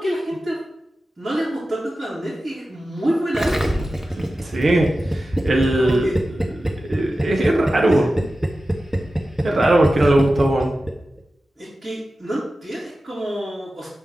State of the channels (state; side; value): normal; both; correlation 0.94